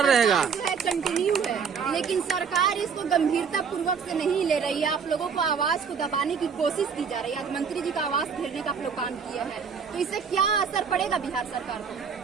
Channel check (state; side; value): quieter; left; 6.2 dB